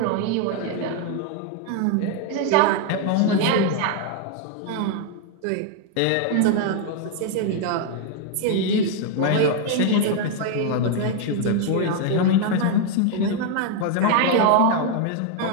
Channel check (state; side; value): different; both; correlation 0.01